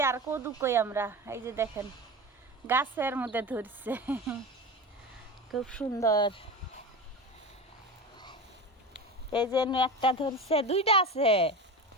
আর কদু কই আমরা। এই যে দেখেন গাছের মধ্যে ধরছে খুব সুন্দর। এই যে একটা ধরছে, দুইটা আছে।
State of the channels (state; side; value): normal; both; correlation 0.27